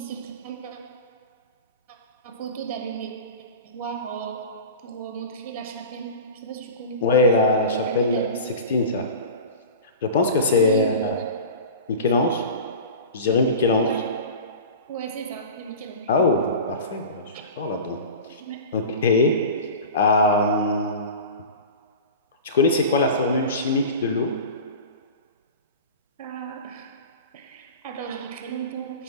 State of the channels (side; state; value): both; inverted; correlation -0.33